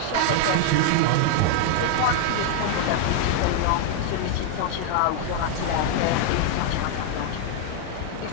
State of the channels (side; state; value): both; different; correlation 0.00